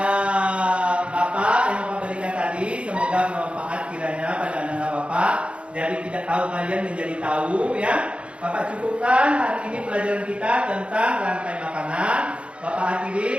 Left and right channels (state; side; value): late; left; 0.059 ms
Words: Bapak yang Bapak berikan tadi, semoga bermanfaat kiranya pada anak Bapak. Dari tidak tahu kalian menjadi tahu, ya. Bapak cukupkan hari ini pelajaran kita tentang rantai makanan. Bapak